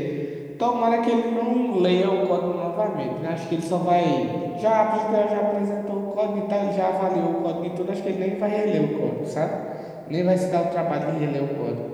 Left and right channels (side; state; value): both; identical; correlation 1.00